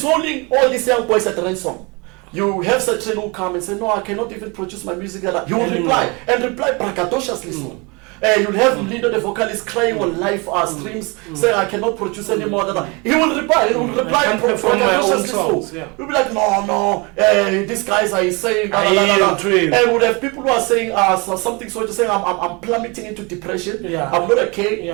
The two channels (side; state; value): left; quieter; 28.5 dB